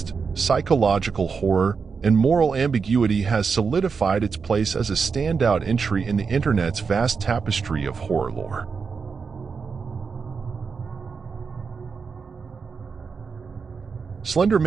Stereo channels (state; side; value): quieter; left; 5.4 dB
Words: psychological horror, and moral ambiguity has solidified its place as a standout entry in the internet's vast tapestry of horror lore. Slender